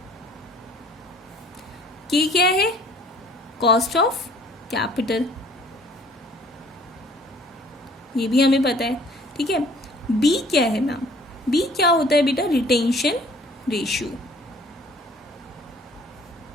K क्या है? Cost of capital. ये भी हमें पता है. ठीक है. B क्या है मैम? B क्या होता है बेटा? Retention ratio.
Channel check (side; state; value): both; normal; correlation 0.55